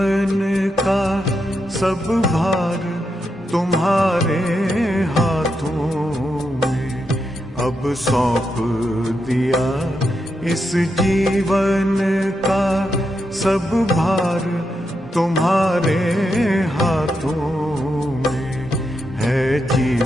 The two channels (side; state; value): both; normal; correlation 0.84